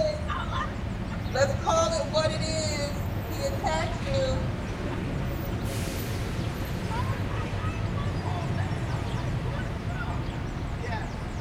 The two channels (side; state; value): both; identical; correlation 1.00